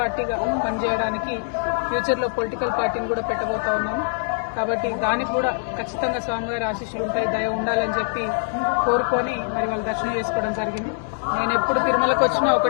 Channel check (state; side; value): silent; right; 63 dB below the other